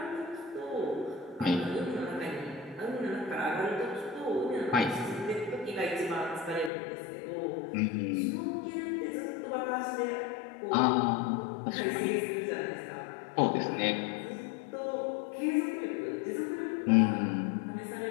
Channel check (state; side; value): drops out; right; at 6.7 s